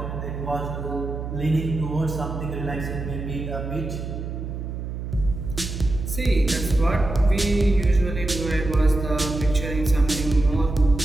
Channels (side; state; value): right; noise; hum, 6 dB below the sound